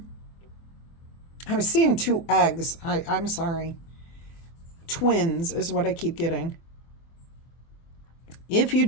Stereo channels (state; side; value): late; right; 24 ms